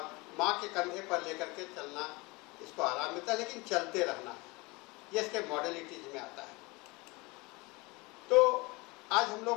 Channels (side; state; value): right; quieter; 24.9 dB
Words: माँ के कंधे पर लेकर के चलना, इसको आराम मिलता है, लेकिन चलते रहना है, ये इसके मॉडलिटीज में आता है। तो आज हम